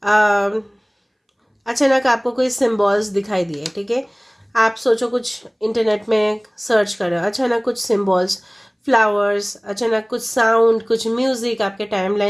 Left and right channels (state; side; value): identical; both; correlation 1.00